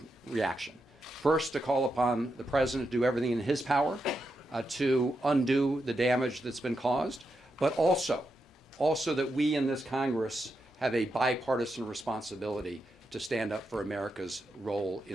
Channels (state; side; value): normal; both; correlation 0.85